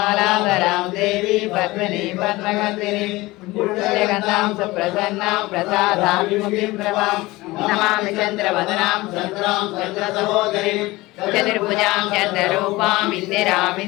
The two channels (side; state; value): right; quieter; 20.3 dB